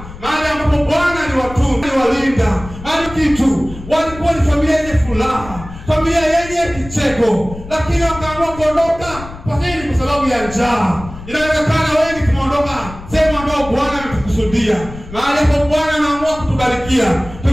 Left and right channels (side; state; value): left; noise; rumble, 14 dB below the sound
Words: mahali ambapo Bwana aliwatunza, aliwalinda, alikitu, walikuwa ni familia yenye furaha, familia yenye kicheko, lakini wakaamua kuondoka kwa nini? Kwa sababu ya njaa. Inawezekana wengi tumeondoka sehemu ambayo Bwana ametukusudia, mahali ambapo Bwana anaamua kutubarikia.